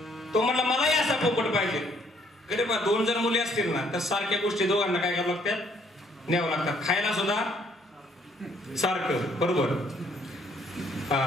तो म्हणला मलाही असा पोपट पाहिजे. अरे बा 2 जर मुली असतील ना तर सारख्या गोष्टी दोघांना काय करावं लागतात? न्यावं लागतात. खायला सुद्धा सारखं, बरोबर,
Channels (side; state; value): both; normal; correlation 0.65